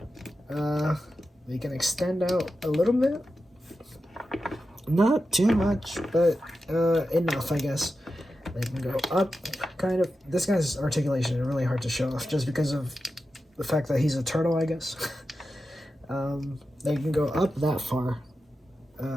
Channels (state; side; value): normal; both; correlation 0.91